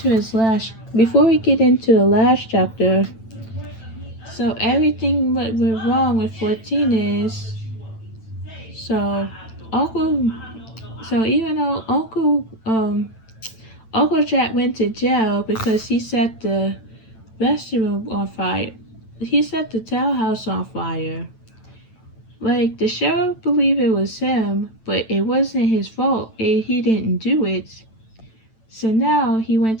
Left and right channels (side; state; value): right; late; 9.0 ms